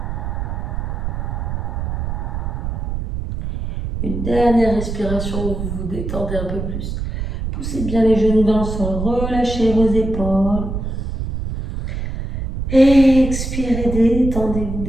Une dernière respiration où vous vous détendez un peu plus. Poussez bien les genoux dans le sol, relâchez vos épaules. Expirez,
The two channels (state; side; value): noise; right; rumble, 4 dB below the sound